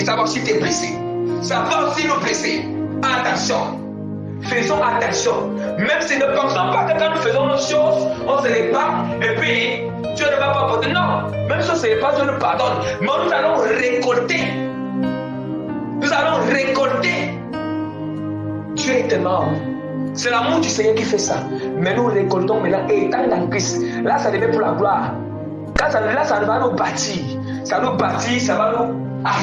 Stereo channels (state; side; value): identical; both; correlation 1.00